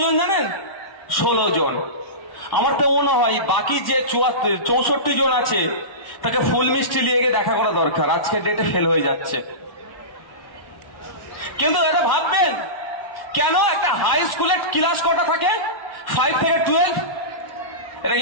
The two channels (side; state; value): right; late; 1.1 ms